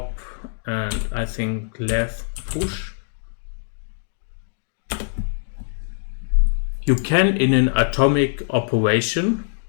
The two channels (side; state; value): right; silent; digital silence